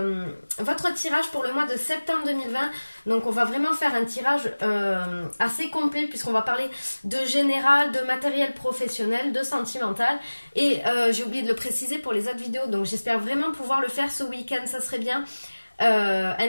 votre tirage pour le mois de septembre 2020. Donc on va vraiment faire un tirage assez complet puisqu'on va parler de général, de matériel professionnel, de sentimental. Et j'ai oublié de le préciser pour les autres vidéos, donc j'espère vraiment pouvoir le faire ce week-end, ça serait bien. Un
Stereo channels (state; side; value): inverted; both; correlation -1.00